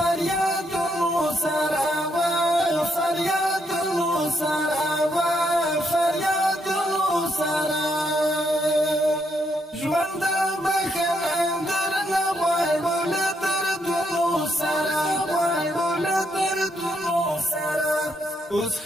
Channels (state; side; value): normal; both; correlation 0.76